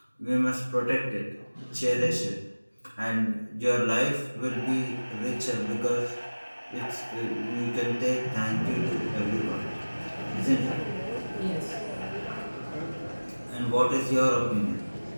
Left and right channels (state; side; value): inverted; both; correlation -1.00